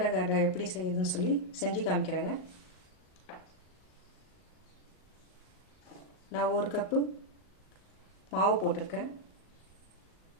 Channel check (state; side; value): late; right; 38 ms